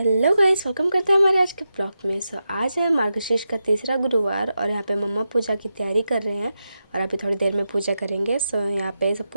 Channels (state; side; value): inverted; both; correlation -0.89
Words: guys, welcome करते हैं हमारे आज के ब्लॉग में। आज है मार्गशीर्ष का तीसरा गुरुवार और यहाँ पे मम्मा पूजा की तैयारी कर रहे हैं और अभी थोड़ी देर में पूजा करेंगे। यहाँ पे सब